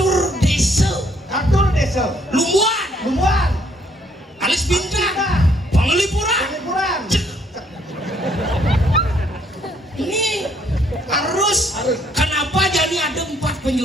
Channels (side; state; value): both; normal; correlation 0.66